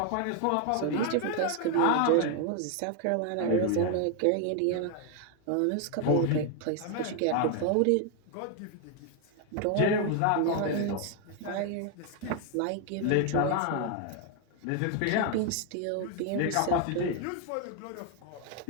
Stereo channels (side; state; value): both; different; correlation 0.01